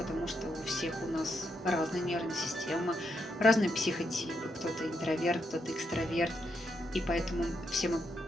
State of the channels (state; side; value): normal; both; correlation 0.81